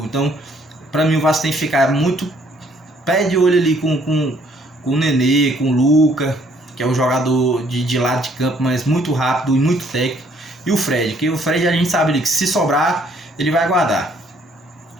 Então para mim o Vasco tem que ficar muito pé de olho ali com o Nenê, com o Luca, que é um jogador de lado de campo, mas muito rápido e muito técnico. E o Fred, que o Fred a gente sabe ali que se sobrar, ele vai guardar.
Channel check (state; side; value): normal; both; correlation 0.64